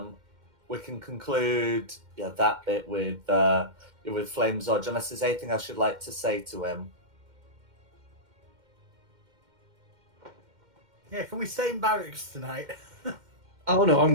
conclude that bit with Flame Zodge, unless there's anything I should like to say to him. Yeah, can we stay in barracks tonight? Oh no,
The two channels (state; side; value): late; left; 2.1 ms